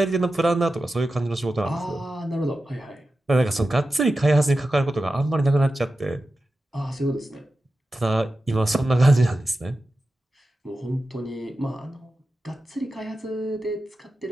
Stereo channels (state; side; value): normal; both; correlation 0.92